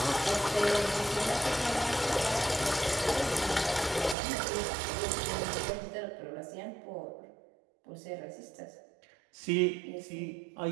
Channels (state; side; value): drops out; left; at 4.2 s